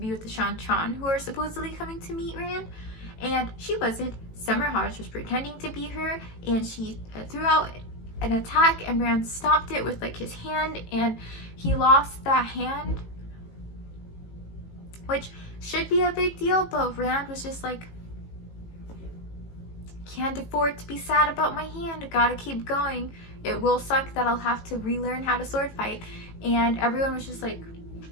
with the Shan-Chan, who are supposedly coming to meet Rand. And she wasn't. Summer Hodge was pretending to be her, and she threw out an attack, and Rand stopped it with like his hand, and he lost that hand, which should be a big deal, but Rand was just like, can't afford to be sad about my hand, gotta keep going. It will suck that I'll have to relearn how to sword fight. And everyone was just like,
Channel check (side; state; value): right; late; 18 ms